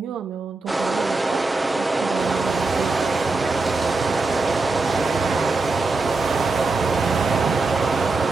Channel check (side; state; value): left; quieter; 3.6 dB